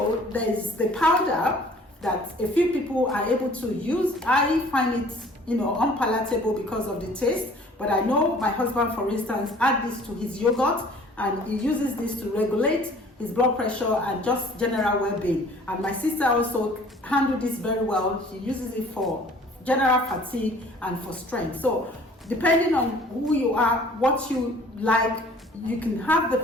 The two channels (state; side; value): normal; both; correlation 0.52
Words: there's the powder that a few people are able to use. I find it, unpalatable because of the taste, but I know my husband, for instance, add this to his yogurt, and he uses this to regulate his blood pressure and just general well-being. And my sister also handled this very well. She uses it for general fatigue and for strength. So depending on who you are, what you like, you can have